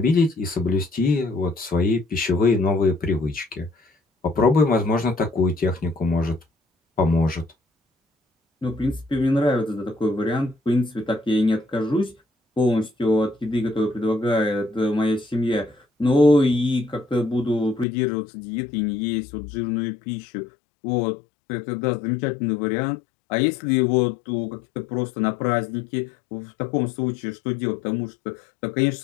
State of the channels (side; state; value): right; drops out; at 17.9 s